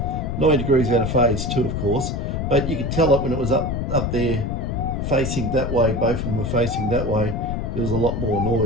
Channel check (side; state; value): left; noise; rumble, 2 dB below the sound